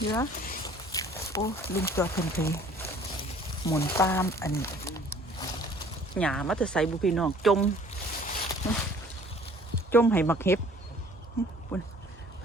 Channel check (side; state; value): both; normal; correlation 0.53